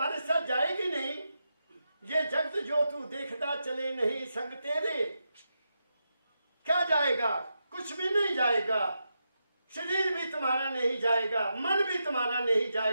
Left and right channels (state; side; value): inverted; both; correlation -0.86